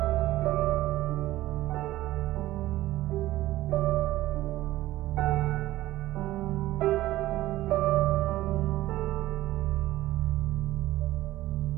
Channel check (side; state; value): left; quieter; 16.0 dB